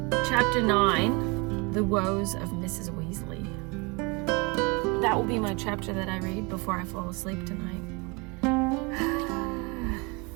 Chapter 9, The Woes of Mrs. Weasley. That will be my chapter that I read before I fall asleep tonight.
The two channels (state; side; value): quieter; left; 29.0 dB